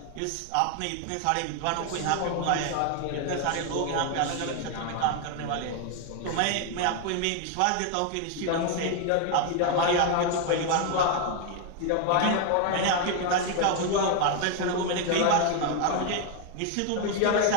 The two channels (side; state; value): both; different; correlation 0.01